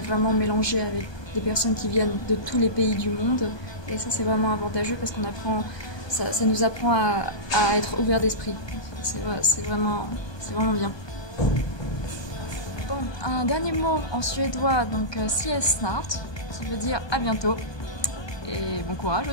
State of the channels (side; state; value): right; late; 1.2 ms